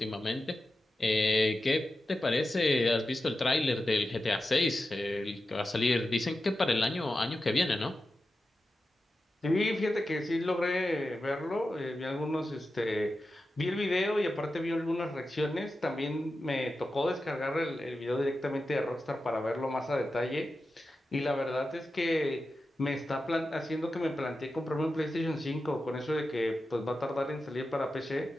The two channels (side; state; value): both; normal; correlation 0.91